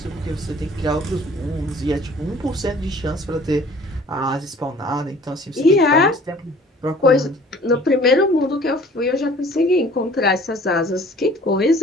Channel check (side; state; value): both; normal; correlation 0.51